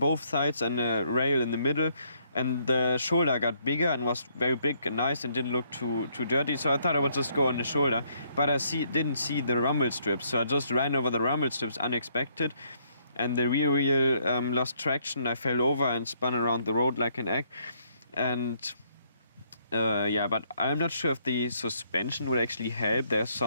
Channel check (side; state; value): both; inverted; correlation -0.70